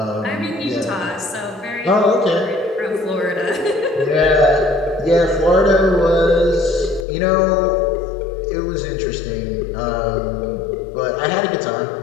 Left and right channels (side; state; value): right; drops out; at 7.1 s